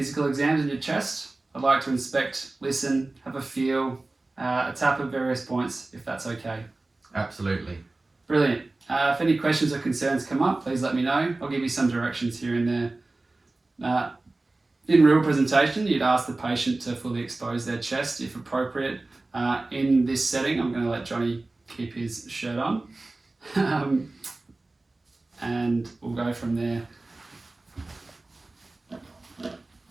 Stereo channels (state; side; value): quieter; left; 3.1 dB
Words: exams in your chest. I'd like to inspect, listen, have a feel, a tap of various points, if that's okay. Absolutely. Brilliant. If any questions or concerns come up, please let me know. I'll give you some directions here and there. In real presentation, you'd ask the patient to fully expose their chest if appropriate. In this setting, I'm going to let Johnny keep his shirt on. And we'll go from there.